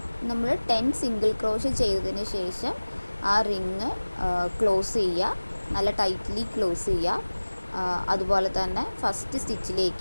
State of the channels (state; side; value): inverted; both; correlation -1.00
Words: നമ്മൾ 10 സിംഗിൾ ക്രോഷേ ചെയ്തതിന് ശേഷം ആ റിങ് ക്ലോസ് ചെയ്യുക, നല്ല ടൈറ്റ്ലി ക്ലോസ് ചെയ്യുക. അതുപോലെ തന്നെ ഫസ്റ്റ്